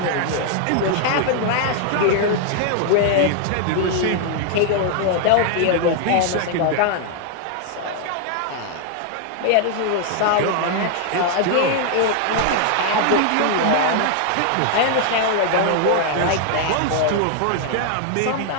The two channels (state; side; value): different; both; correlation 0.00